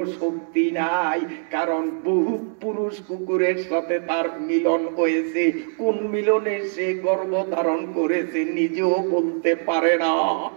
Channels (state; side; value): silent; left; 62 dB below the other